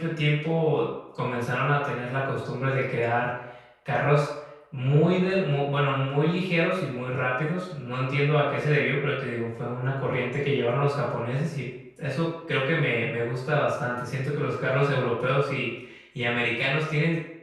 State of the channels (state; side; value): identical; both; correlation 1.00